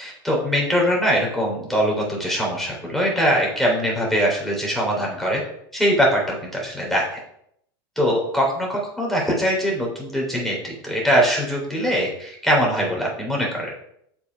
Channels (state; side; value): normal; both; correlation 0.50